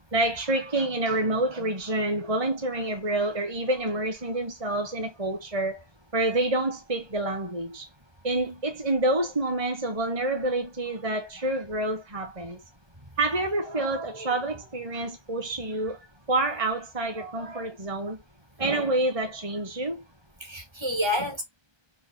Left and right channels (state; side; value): late; left; 1.3 ms